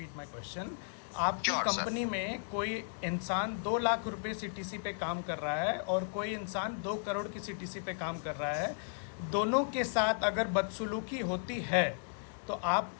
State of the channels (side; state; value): right; silent; digital silence